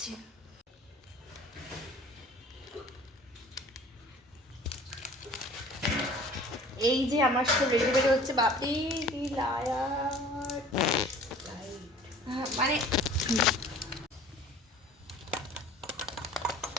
এই যে আমার সব রেডি রেডি হচ্ছে। বাপি মানে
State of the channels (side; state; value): both; normal; correlation 0.47